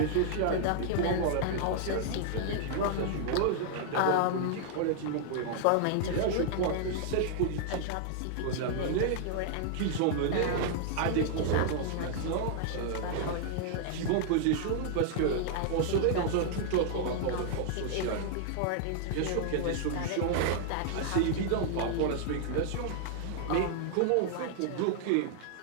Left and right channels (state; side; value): different; both; correlation -0.01